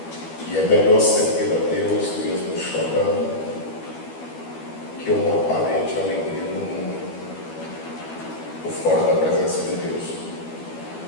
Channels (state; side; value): late; right; 12 ms